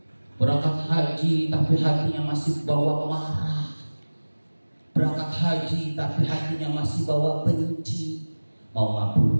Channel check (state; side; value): inverted; both; correlation -1.00